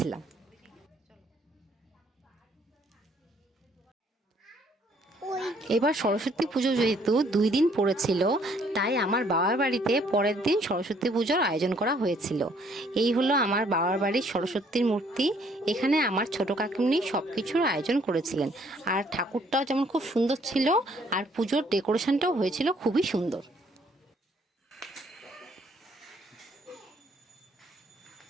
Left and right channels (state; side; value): normal; both; correlation 0.64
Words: এবার সরস্বতী পুজো যেহেতু 2 দিন পড়েছিল, তাই আমার বাবার বাড়িতে পরের দিন সরস্বতী পুজোর আয়োজন করা হয়েছিল। এই হলো আমার বাবার বাড়ির সরস্বতীর মূর্তি। এখানে আমার ছোট কাকিমনি সব কিছুর আয়োজন করেছিলেন। আর ঠাকুরটাও যেমন খুব সুন্দর ছিল, আর পুজোর ডেকোরেশনটাও হয়েছিল খুবই সুন্দর।